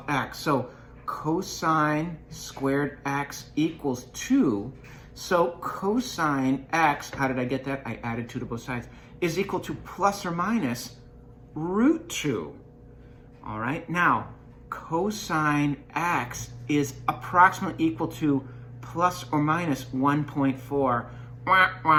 x. So cosine squared x equals 2. So cosine x, how did I get that? I added 2 to both sides, is equal to plus or minus root 2. All right, now cosine x is approximately equal to plus or minus 1.4 Wah,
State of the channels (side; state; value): both; identical; correlation 1.00